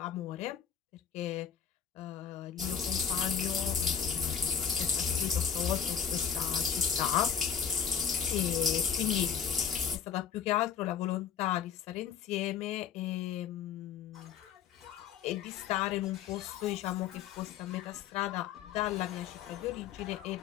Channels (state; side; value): quieter; right; 8.0 dB